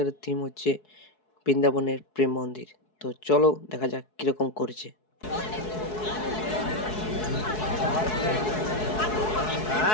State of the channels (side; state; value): right; late; 4.7 ms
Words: থিম হচ্ছে বৃন্দাবনের প্রেম মন্দির। তো চলো দেখা যাক কিরকম করেছে।